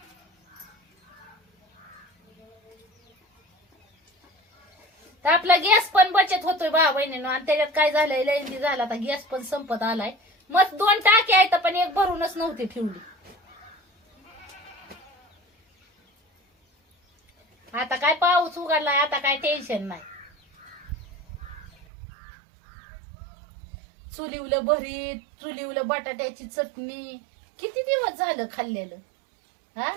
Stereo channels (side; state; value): left; drops out; at 21.7 s